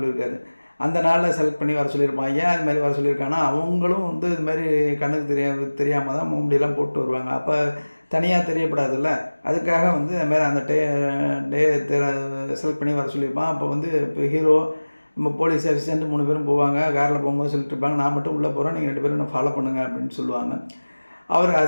அந்த நாளில் செலக்ட் பண்ணி வர சொல்லியிருப்பான். ஏன் அது மாதிரி வர சொல்லியிருக்காங்கன்னா, அவங்களும் வந்து இது மாதிரி கண்ணுக்கு தெரியாமல் தான் முகமுடியெல்லாம் போட்டு வருவாங்க. அப்போ தனியாக தெரியப்படாதுல்ல, அதுக்காக வந்து அதுமாதிரி அந்த டே செலக்ட் பண்ணி வர சொல்லியிருப்பான். அப்போ வந்து இப்போ ஹீரோ, நம்ம போலீஸ் அசிஸ்டண்ட் 3 பேரும் போவாங்க. காரில் போகும்போது சொல்லிட்டு இருப்பாங்க, நான் மட்டும் உள்ளே போகிறேன், நீங்கள் 2 பேரும் என்ன ஃபாலோ பண்ணுங்கள் அப்படின்னு சொல்லுவாங்க. அவர்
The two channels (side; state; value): both; inverted; correlation -1.00